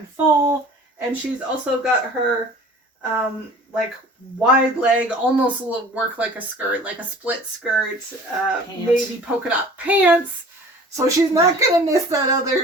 fall. And she's also got her like wide leg, almost work like a skirt, like a split skirt, navy polka dot pants. So she's not going to miss that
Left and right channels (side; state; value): both; normal; correlation 0.45